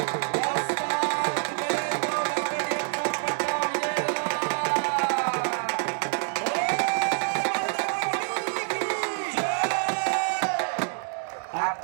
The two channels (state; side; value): silent; left; digital silence